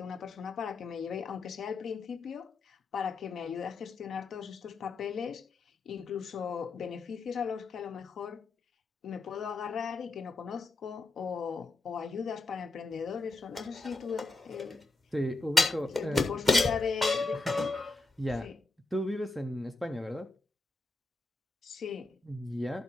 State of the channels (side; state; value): right; quieter; 3.3 dB